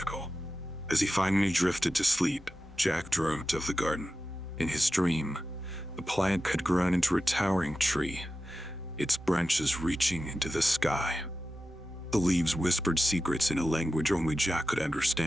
As he finally drifted to sleep, Jack dreamt of the garden. In his dream, the plant had grown into a towering tree, its branches reaching into the sky. The leaves whispered secrets in a language only Jack could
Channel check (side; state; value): both; normal; correlation 0.93